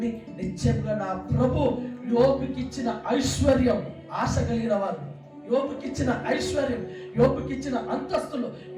నిశ్చయంగా నా ప్రభు యోబుకిచ్చిన ఐశ్వర్యం, ఆశ కలిగిన వారు యోబుకిచ్చిన ఐశ్వర్యం, యోబుకిచ్చిన అంతస్తులు,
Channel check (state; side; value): identical; both; correlation 1.00